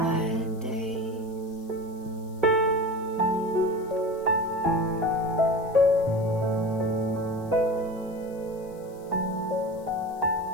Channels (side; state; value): left; noise; hiss, 27 dB below the sound